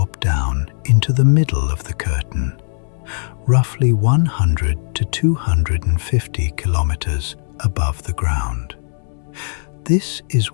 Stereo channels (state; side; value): silent; right; digital silence